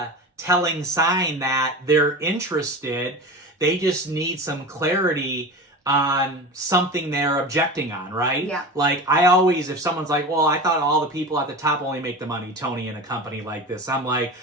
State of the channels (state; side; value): normal; both; correlation 0.29